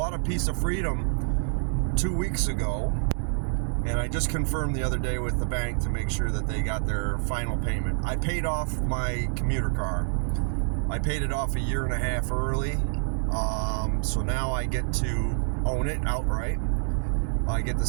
a piece of freedom 2 weeks ago, and I just confirmed the other day with the bank to make sure that they got their final payment. I paid off my commuter car. I paid it off 1.5 years early, so now I get to own it outright. I get to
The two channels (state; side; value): silent; left; 60 dB below the other